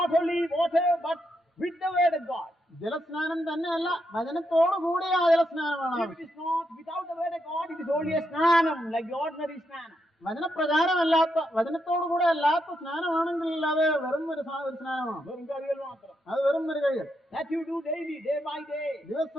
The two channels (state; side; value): normal; both; correlation 0.81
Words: only water but with the word of God. ജലസ്നാനം തന്നെയല്ല, വചനത്തോടു കൂടിയ ആ ജലസ്നാനമാണ് If it is not without the word of God, it is only a snanam, like the ordinary snanam. വചനപ്രകാരമല്ലാത്ത, വചനത്തോടുകൂടെ അല്ലാത്ത സ്നാനമാണെങ്കിൽ അത് വെറും ഒരു സ്നാനമാണ്. വെറും കഴിയൽ മാത്രം. അത് വെറും ഒരു കഴിയൽ. That you do daily, day by day.